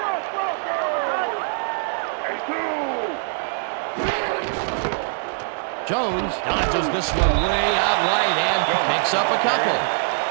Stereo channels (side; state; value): left; silent; digital silence